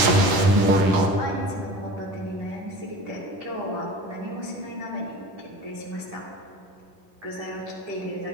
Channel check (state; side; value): late; left; 11 ms